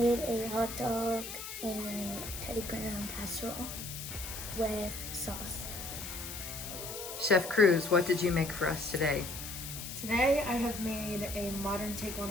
a hot dog and Teddy Graham casserole with sauce. Chef Cruz, what did you make for us today? Today I have made a modern take on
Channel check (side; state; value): left; noise; hiss, 8 dB below the sound